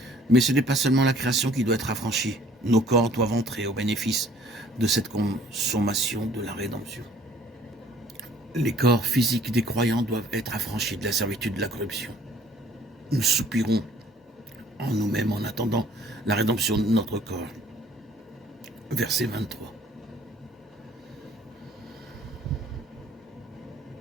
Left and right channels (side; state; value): both; normal; correlation 0.56